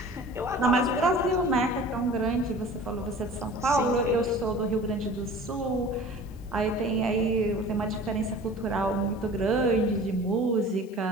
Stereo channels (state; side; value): noise; left; hiss, 28 dB below the sound